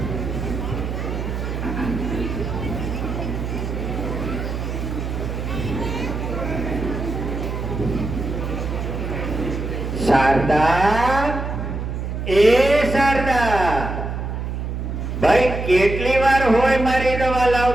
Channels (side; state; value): right; noise; hum, 4 dB below the sound